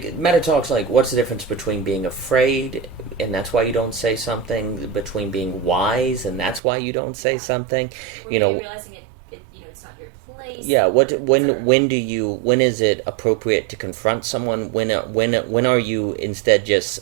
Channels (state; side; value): drops out; left; at 6.6 s